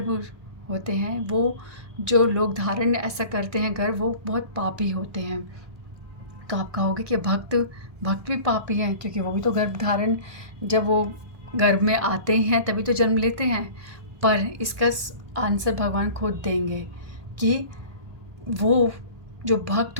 होते हैं, वो जो लोग धारण ऐसा करते हैं गर्भ, वो बहुत पापी होते हैं। तो आप कहोगे कि भक्त भी पापी हैं, क्योंकि वो भी तो गर्भ धारण, जब वो गर्भ में आते हैं तभी तो जन्म लेते हैं। पर इसका आंसर भगवान खुद देंगे कि वो जो भक्त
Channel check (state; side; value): late; left; 1.2 ms